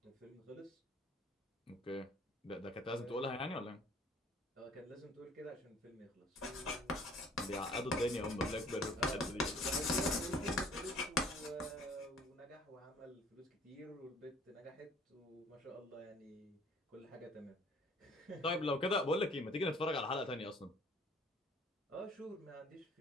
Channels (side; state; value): both; normal; correlation 0.55